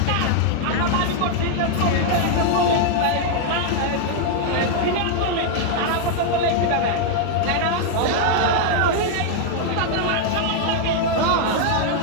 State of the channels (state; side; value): different; both; correlation 0.00